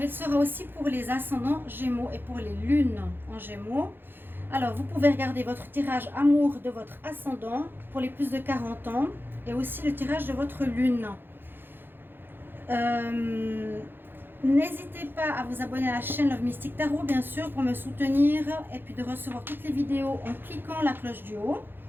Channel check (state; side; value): late; left; 0.099 ms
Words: sera aussi pour les ascendants Gémeaux et pour les lunes en Gémeaux. Alors, vous pouvez regarder votre tirage amour de votre ascendant pour les plus de 40 ans et aussi le tirage de votre lune. N'hésitez pas à vous abonner à la chaîne Love Mystic Tarot, bien sûr, pour me soutenir et puis de recevoir toutes les vidéos en cliquant la cloche du haut.